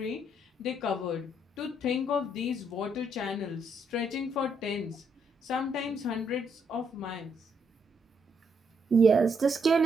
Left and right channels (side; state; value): both; normal; correlation 0.74